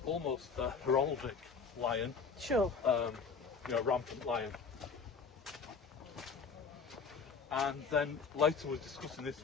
Almost a heraldic lion, Sure. Rampant lion. And then later was discussing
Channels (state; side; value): quieter; right; 5.3 dB